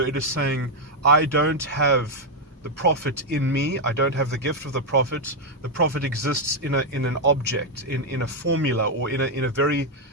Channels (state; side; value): normal; both; correlation 0.02